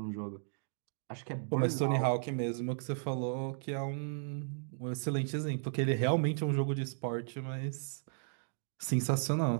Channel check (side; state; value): left; silent; digital silence